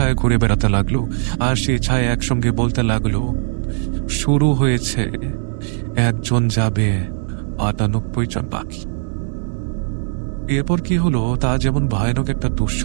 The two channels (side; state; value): left; silent; 66 dB below the other